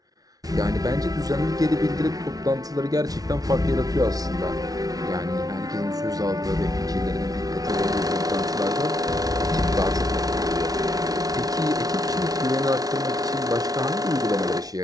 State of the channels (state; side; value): late; left; 0.18 ms